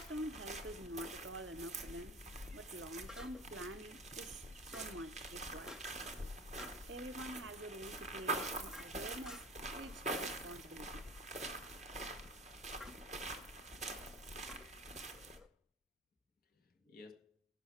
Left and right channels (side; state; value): both; normal; correlation 0.34